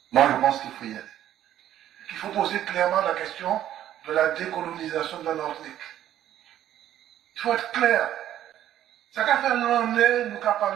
Moi, je pense qu'il faut y aller. Il faut poser clairement la question de la décolonisation de la Martinique. Il faut être clair. Ça qu'a fait l'année, nous qu'a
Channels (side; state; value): left; quieter; 11.8 dB